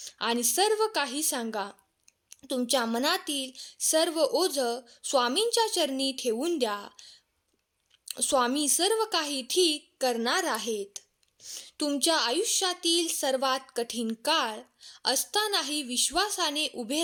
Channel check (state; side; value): identical; both; correlation 1.00